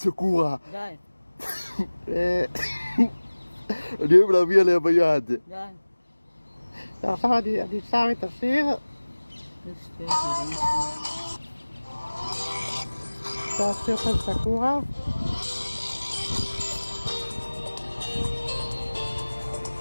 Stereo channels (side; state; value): both; inverted; correlation -1.00